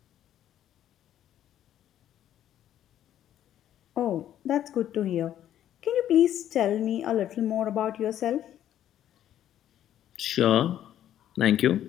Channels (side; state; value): right; quieter; 11.3 dB